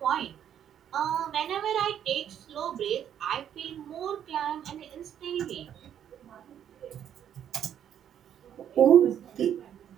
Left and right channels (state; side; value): quieter; left; 9.7 dB